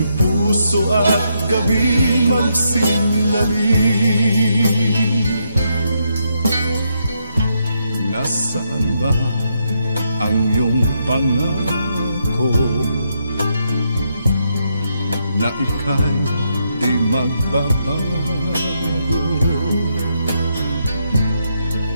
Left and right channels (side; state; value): both; inverted; correlation -0.79